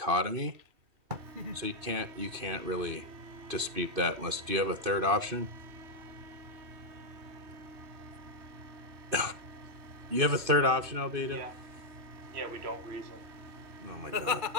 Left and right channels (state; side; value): late; left; 2.5 ms